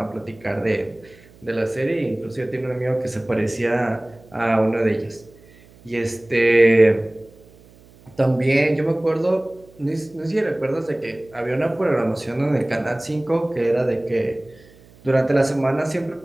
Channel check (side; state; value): right; noise; hum, 26 dB below the sound